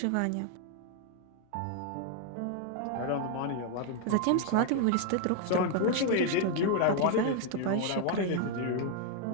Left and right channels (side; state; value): both; different; correlation 0.00